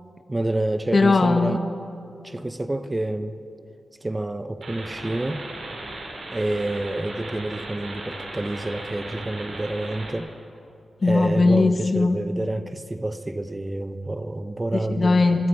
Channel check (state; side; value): normal; both; correlation 0.95